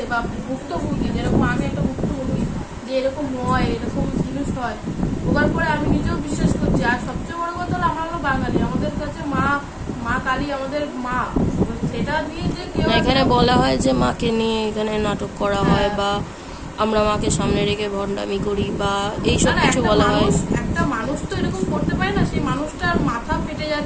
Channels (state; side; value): identical; both; correlation 1.00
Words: বা ভুক্তভোগী, যেরকম আমি একটা ভুক্তভোগী, যে এরকম হয়, এরকম জিনিস হয়, ওবার পরে আমি নিজেও বিশ্বাস করছি। আর সবচেয়ে বড় কথা হলো আমরা হলো বাঙালি, আমাদের কাছে মা কালী আমাদের মা, সেটা নিয়ে যে কেউ এখানে বলা হয় যে মাকে নিয়ে এখানে নাটক করা হয় বা আমরা মাকে সামনে রেখে ভণ্ডামি করি বা এইসব কিছু বলা হয়। একটা মানুষ তো এরকম করতে পারে না, সেই মানুষটার মাথা ফেটে